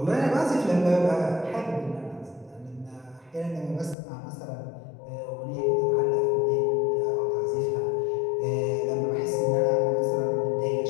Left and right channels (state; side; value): drops out; right; at 4.0 s